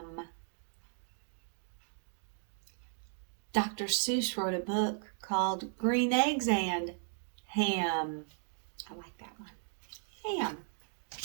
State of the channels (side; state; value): left; silent; 54 dB below the other